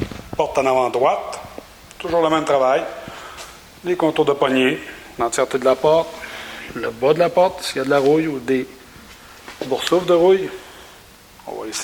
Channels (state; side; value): identical; both; correlation 1.00